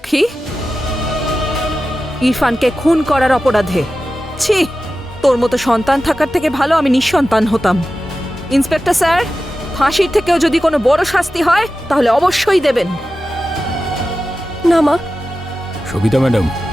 ইরফানকে খুন করার অপরাধে। ছি, তোর মতো সন্তান থাকার থেকে ভালো আমি নিঃসন্তান হতাম। ইন্সপেক্টর স্যার, ফাঁসির থেকেও যদি কোনো বড় শাস্তি হয় তাহলে অবশ্যই দেবেন। না মা। সবিতা ম্যাডাম,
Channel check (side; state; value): both; normal; correlation 0.93